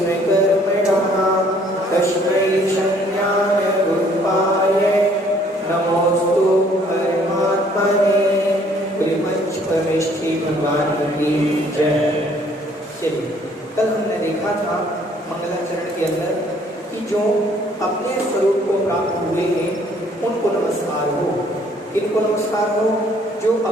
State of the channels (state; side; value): normal; both; correlation 0.61